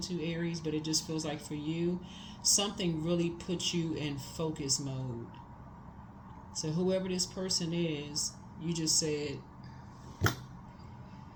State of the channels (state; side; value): identical; both; correlation 1.00